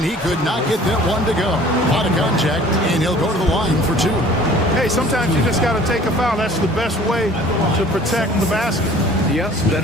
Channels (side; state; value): both; normal; correlation 0.50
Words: he could not get that one to go. A lot of contact, and he'll go to the line for 2. Hey, sometimes you just got to take a foul. That's the best way to protect the basket. Yes,